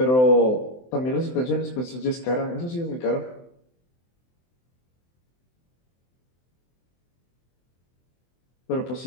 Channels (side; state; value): right; late; 23 ms